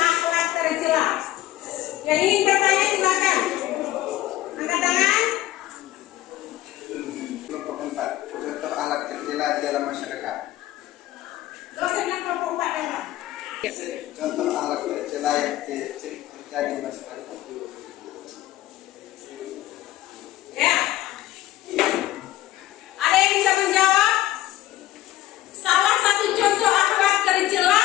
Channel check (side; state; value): right; quieter; 15.0 dB